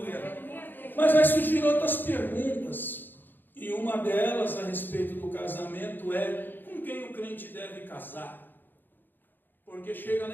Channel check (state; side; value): late; right; 0.092 ms